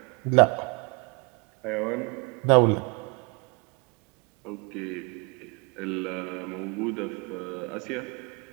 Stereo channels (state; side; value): quieter; left; 32.0 dB